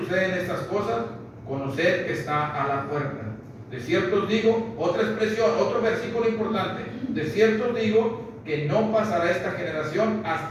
estas cosas, conoced que está a la puerta. De cierto os digo, otra expresión, otro versículo importante, de cierto os digo que no pasará esta generación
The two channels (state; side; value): identical; both; correlation 1.00